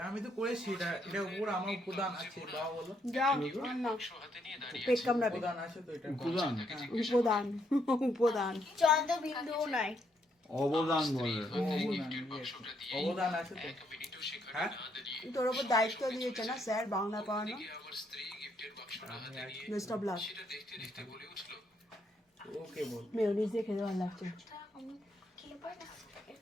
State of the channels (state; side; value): normal; both; correlation 0.74